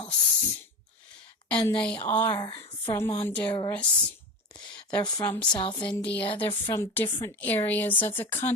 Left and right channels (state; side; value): normal; both; correlation 0.26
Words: And they are from Honduras. They're from South India. They're from different areas of the